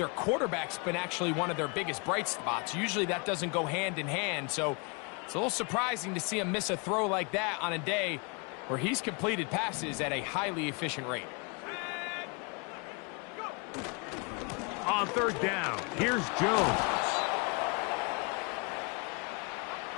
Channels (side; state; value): right; quieter; 32.5 dB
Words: quarterback's been actually one of their biggest bright spots. Usually that doesn't go hand in hand. So it's a little surprising to see him miss a throw like that on a day where he's completed passes at a highly efficient rate. On 3rd down, here's Jones.